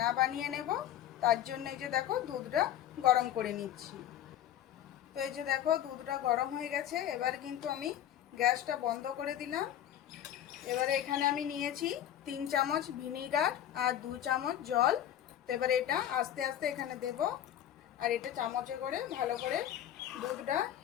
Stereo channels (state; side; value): quieter; right; 11.1 dB